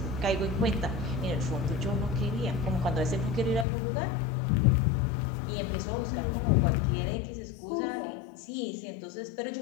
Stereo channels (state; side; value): drops out; right; at 3.7 s